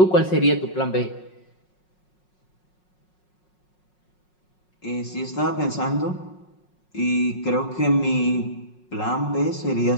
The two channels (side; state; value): right; late; 5.5 ms